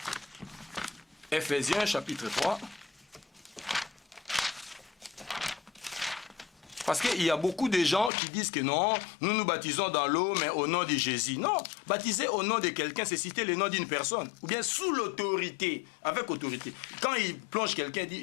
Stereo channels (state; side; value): drops out; right; at 8.1 s